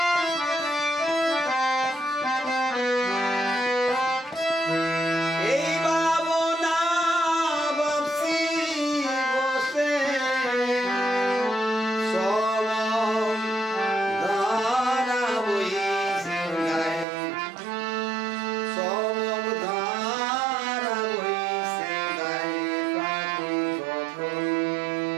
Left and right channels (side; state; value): left; drops out; at 17.1 s